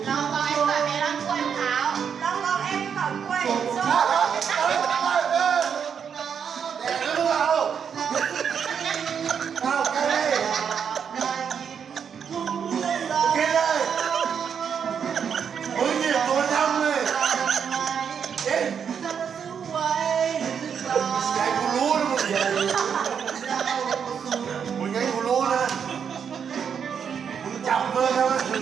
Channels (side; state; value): left; quieter; 7.3 dB